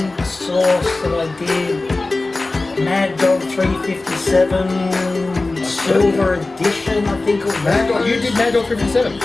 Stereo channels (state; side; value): quieter; right; 3.2 dB